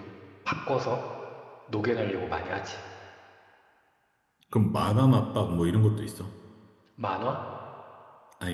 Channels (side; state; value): both; identical; correlation 1.00